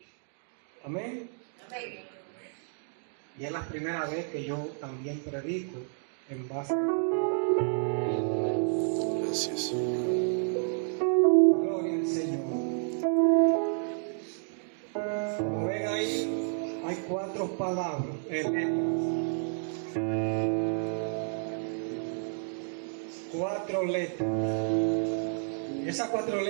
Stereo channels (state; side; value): silent; left; 57 dB below the other